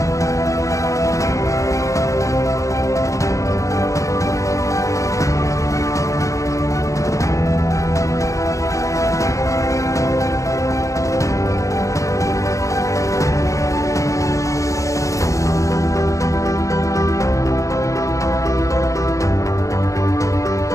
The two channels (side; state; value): right; late; 0.15 ms